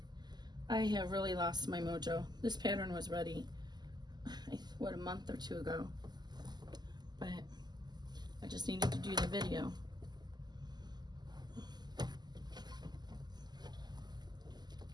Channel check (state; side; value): late; left; 0.21 ms